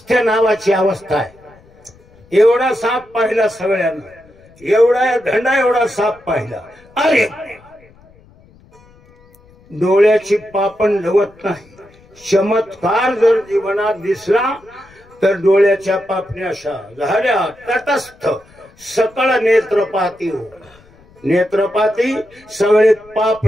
नावाची अवस्था आहे. एवढा साप पाहिला सगळ्यांना, एवढा धंडा एवढा साप पाहिला. अरे डोळ्याची पापण लवत नाही. चमत्कार जर जीवनात दिसला तर डोळ्याच्या पापण्या अशा झाल्या तटस्थ. सकळ नेत्रपाती हो. नेत्रपाती सगळे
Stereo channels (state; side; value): noise; left; rumble, 28 dB below the sound